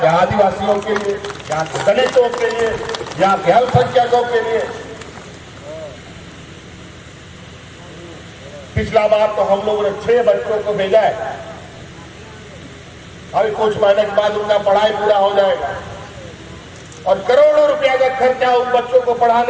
आदिवासियों के लिए, यहाँ के दलितों के लिए, यहाँ के अल्पसंख्यकों के लिए। पिछला बार तो हम लोगों ने 6 बच्चों को भेजा है। अभी कुछ महीने के बाद उनका पढ़ाई पूरा हो जाएगा और करोड़ों रुपया का खर्चा उन बच्चों को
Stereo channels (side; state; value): both; identical; correlation 1.00